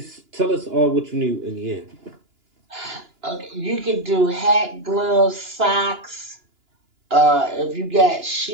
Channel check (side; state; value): left; late; 2.9 ms